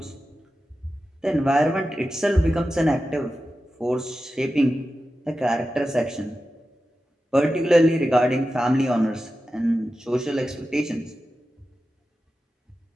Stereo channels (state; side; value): normal; both; correlation 0.93